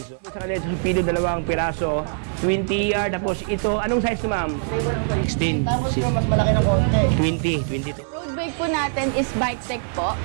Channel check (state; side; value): silent; left; digital silence